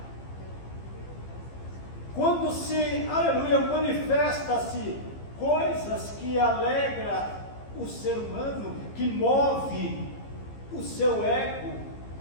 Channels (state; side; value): late; right; 15 ms